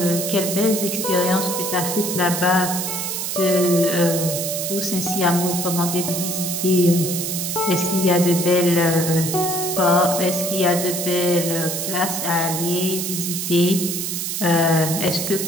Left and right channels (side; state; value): right; noise; hiss, 3 dB below the sound